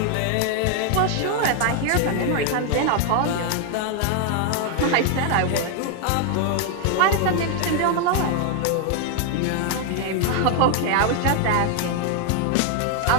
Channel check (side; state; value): both; different; correlation 0.00